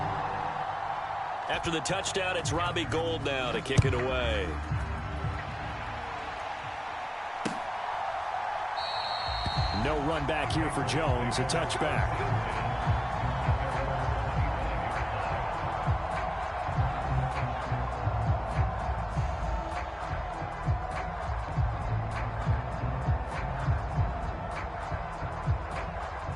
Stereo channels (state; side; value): identical; both; correlation 1.00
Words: After the touchdown, it's Robbie Gould now to kick it away. No run back here for Jones, a touchback.